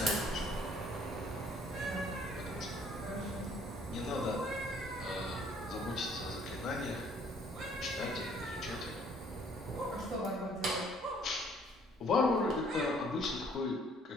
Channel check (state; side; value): normal; both; correlation 0.60